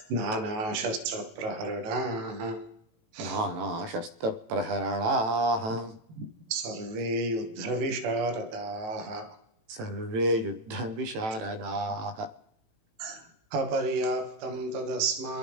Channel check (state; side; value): late; left; 18 ms